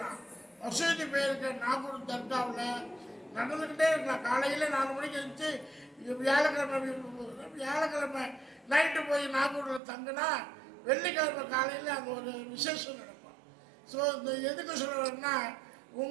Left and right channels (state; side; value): drops out; left; at 9.8 s